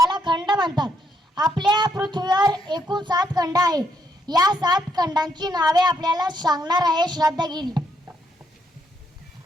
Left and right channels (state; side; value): normal; both; correlation 0.75